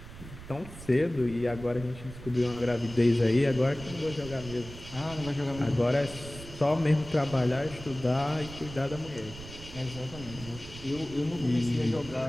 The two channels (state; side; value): noise; right; rumble, 14 dB below the sound